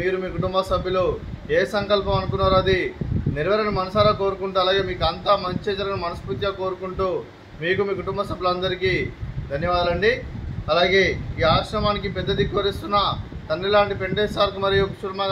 మీ కుటుంబ సభ్యులు ఏ సంకల్పం అనుకున్నారో అది నెరవేరని మనసారా కోరుకుంటూ అలాగే మీకు అంతా మంచి జరగని మనస్ఫూర్తిగా కోరుకుంటూ మీకు మీ కుటుంబ సభ్యులందరికీ ధన్యవాదాలండి. అలాగే ఈ ఆశ్రమానికి పెద్ద దిక్కు వరిస్తున్న తండ్రి లాంటి పెండేశ్వర్ మరియు కుశుర్మ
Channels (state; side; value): identical; both; correlation 1.00